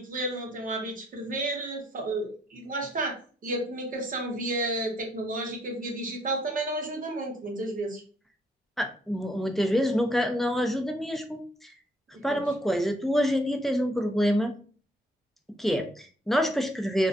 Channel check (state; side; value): normal; both; correlation 0.68